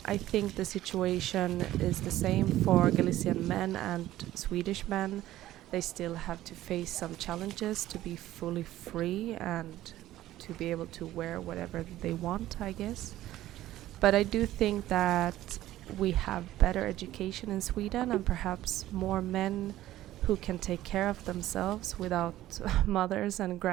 I think the situation is the same for Galician men and Swedish men. They still have to face some challenges to be fully free and to be able to wear whatever they want, I guess. But I do think that we have better education in Sweden and perhaps more men who can take care of themselves without mothers and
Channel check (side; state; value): left; quieter; 14.5 dB